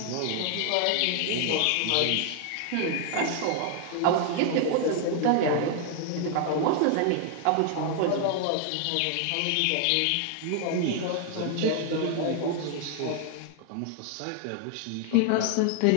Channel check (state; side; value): different; both; correlation 0.00